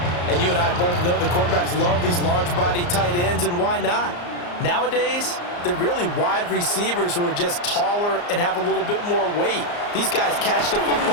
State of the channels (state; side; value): late; right; 34 ms